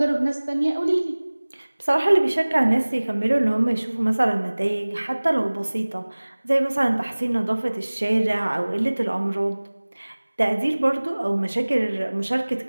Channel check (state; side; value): inverted; both; correlation -1.00